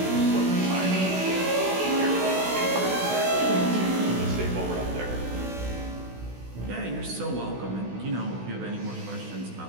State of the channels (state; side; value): late; left; 16 ms